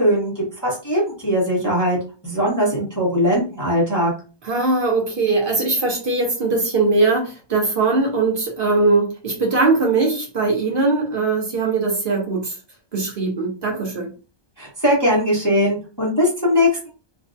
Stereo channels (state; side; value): late; right; 1.2 ms